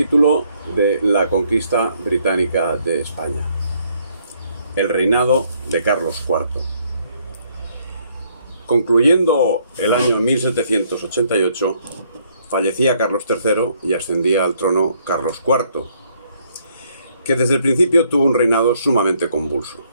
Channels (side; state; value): both; inverted; correlation -0.68